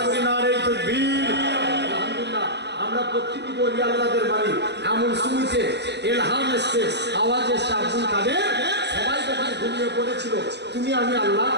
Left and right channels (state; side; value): late; left; 0.50 ms